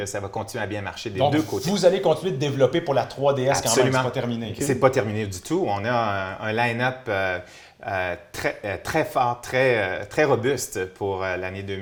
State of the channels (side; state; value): both; identical; correlation 1.00